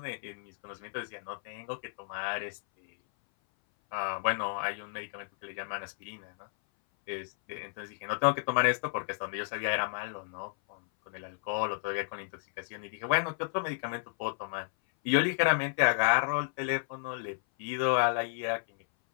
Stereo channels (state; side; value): silent; right; 56 dB below the other